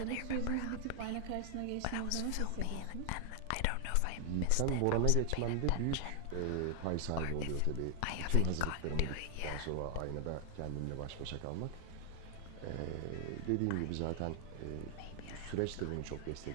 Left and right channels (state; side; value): different; both; correlation 0.00